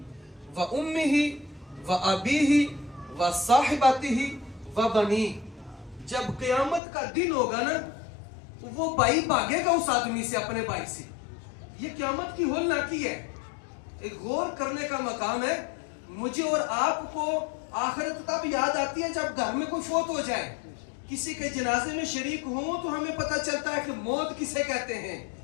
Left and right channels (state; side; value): drops out; right; at 6.8 s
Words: و امہ و ابیہ و صاحبتہ و بنیہ جب قیامت کا دن ہوگا نا تو وہ بھائی بھاگے گا اس آدمی سے اپنے بھائی سے یہ قیامت کی ہولناکی ہے ایک غور کرنے کا مقام ہے مجھے اور آپ کو آخرت تب یاد آتی ہے جب گھر میں کوئی فوت ہو جائے کسی کے جنازے میں شریک ہوں تو ہمیں پتہ چلتا ہے کہ موت کسے کہتے ہیں